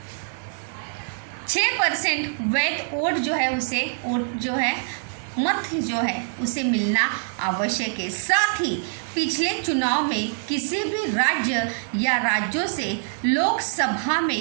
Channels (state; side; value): silent; left; 62 dB below the other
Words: 6% वैध वोट जो है उसे वोट जो है मत जो है उसे मिलना आवश्यक है। साथ ही पिछले चुनाव में किसी भी राज्य या राज्यों से लोकसभा